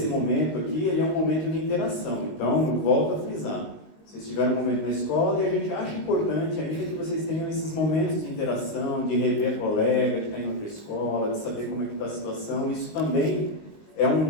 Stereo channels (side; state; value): right; late; 19 ms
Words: momento aqui ele é um momento de interação, então eu volto a frisar. Vocês tiveram um momento na escola e a gente acha importante ainda que vocês tenham esses momentos de interação, de rever a colega que está indo para a escola, de saber como é que está a situação. Isso também é